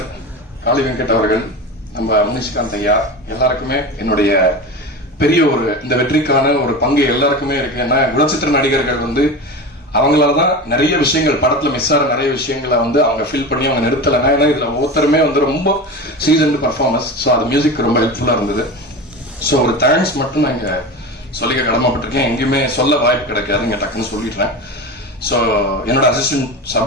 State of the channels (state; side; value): normal; both; correlation 0.27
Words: காளி வெங்கட் அவர்கள், நம்ம முனிஷ்காந்த் ஐயா, எல்லாருக்குமே என்னுடைய பெரிய இந்த வெற்றிக்கான ஒரு பங்கு எல்லாருக்குமே இருக்கு. ஏன்னா குணச்சித்திர நடிகர்கள் வந்து அவங்களாலதான் நிறைய விஷயங்கள் படத்துல மிஸ் ஆகிற நிறைய விஷயங்களை வந்து அவங்க ஃபீல் பண்ணி அவங்க நிறுத்தலைங்க. ஏன்னா இதுல ஒவ்வொருத்தருமே வந்து ரொம்ப சீசன்டு பர்ஃபார்மன்ஸ். ஸோ அது மியூசிக் ரொம்ப ஹெல்ப்ஃபுல்லா இருந்தது. ஸோ ஒரு தேங்க்ஸ் மட்டும் நான் இங்க சொல்லிக்க கடமைப்பட்டிருக்கேன். எங்கேயுமே சொல்ல வாய்ப்பு கிடைக்காது, இங்க டக்குன்னு சொல்லிடுறேன். ஸோ என்னோட அசிஸ்டன்ட்